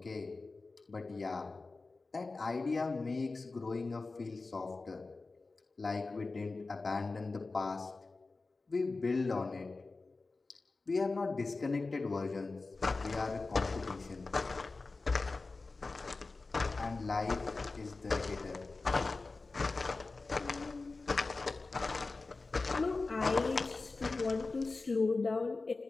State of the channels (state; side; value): quieter; right; 3.7 dB